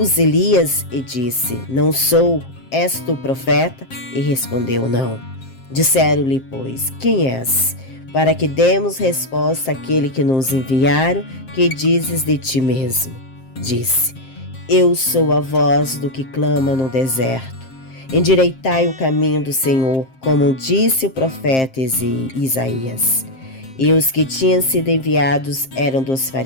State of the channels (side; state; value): right; late; 7.6 ms